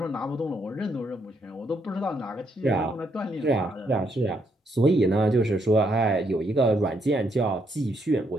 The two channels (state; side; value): normal; both; correlation 0.75